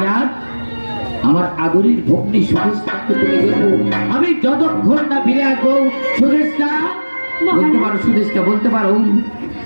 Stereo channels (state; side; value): inverted; both; correlation -1.00